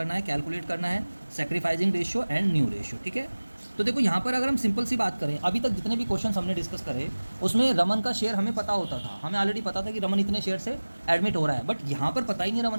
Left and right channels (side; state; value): both; inverted; correlation -1.00